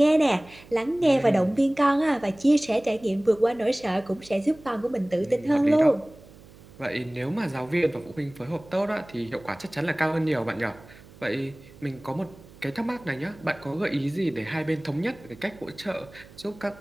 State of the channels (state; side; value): noise; right; hum, 22 dB below the sound